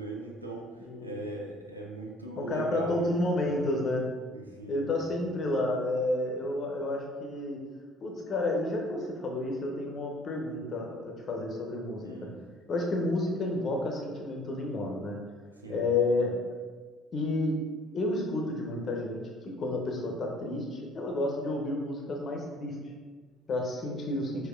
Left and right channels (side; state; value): both; normal; correlation 0.55